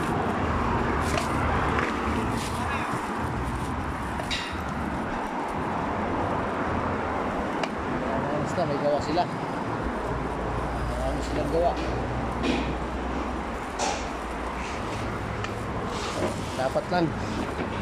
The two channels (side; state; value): both; identical; correlation 1.00